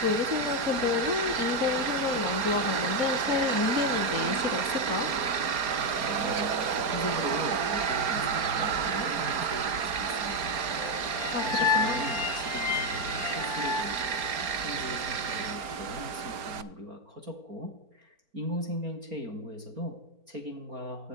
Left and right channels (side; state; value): left; late; 4.4 ms